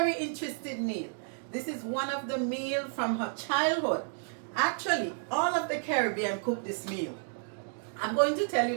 interesting meal. This is one of the meals from her childhood. Actually, all of the Caribbean cook this meal. I'm going to tell you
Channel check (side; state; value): left; silent; digital silence